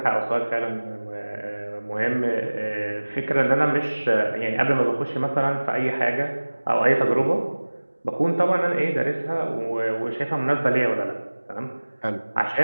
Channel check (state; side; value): inverted; both; correlation -1.00